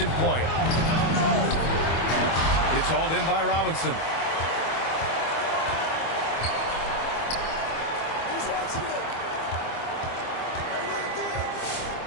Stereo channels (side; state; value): right; late; 25 ms